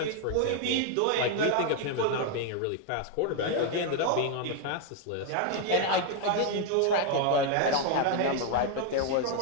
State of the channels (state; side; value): different; both; correlation 0.01